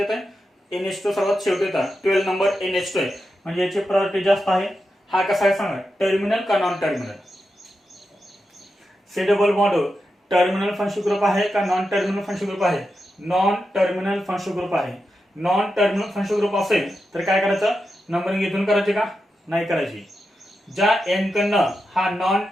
आहे. NH2 सर्वात शेवटी होता, 12 नंबर NH2 आहे, म्हणजे याची प्रायोरिटी जास्त आहे. हा कसा आहे सांगा, टर्मिनल का non terminal. C double bond O terminal functional group आहे का नॉन टर्मिनल फंक्शनल ग्रुप आहे. नॉन टर्मिनल फंक्शनल ग्रुप आहे. नॉन टर्मिनल फंक्शनल ग्रुप असेल तर काय करायचं, नंबरिंग इथून करायची का नाही करायची. ज्या एन कडनं हा non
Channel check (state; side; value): normal; both; correlation 0.88